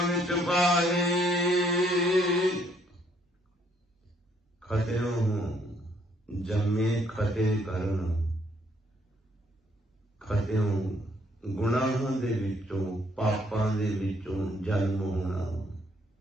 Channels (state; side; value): normal; both; correlation 0.67